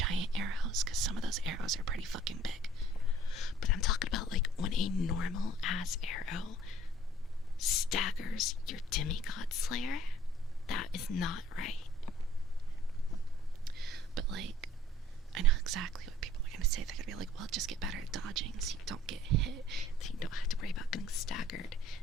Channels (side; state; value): both; normal; correlation 0.55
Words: arrows, because some of those arrows are pretty fucking big. But I'm talking about like when a normal ass arrow staggers your demigod slayer. That is not right. But like, I know exactly what people are gonna say. They're gonna be like, well, just get better at dodging so you don't get hit, so you don't have to worry about getting staggered